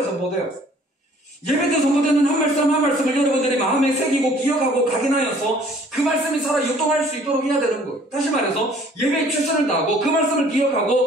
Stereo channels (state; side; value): normal; both; correlation 0.55